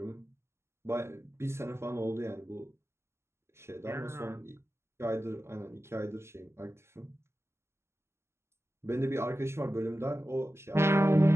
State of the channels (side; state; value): left; late; 0.13 ms